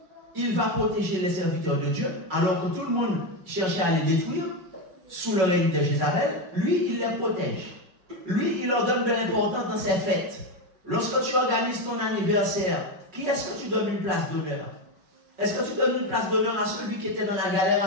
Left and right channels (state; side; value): late; left; 5.4 ms